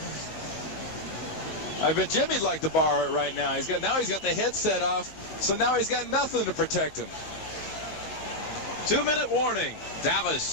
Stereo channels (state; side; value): late; right; 19 ms